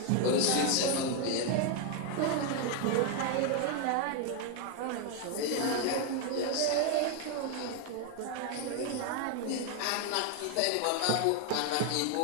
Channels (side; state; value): both; different; correlation 0.01